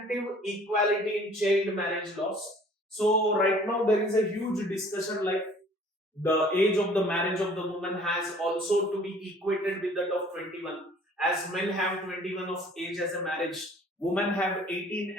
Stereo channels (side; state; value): both; normal; correlation 0.53